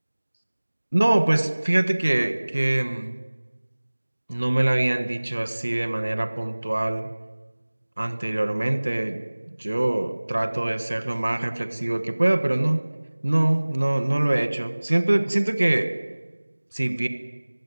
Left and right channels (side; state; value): both; inverted; correlation -1.00